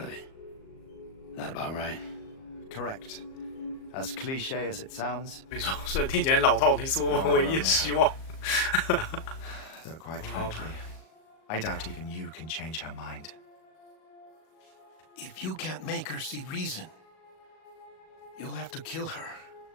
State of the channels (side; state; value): right; late; 38 ms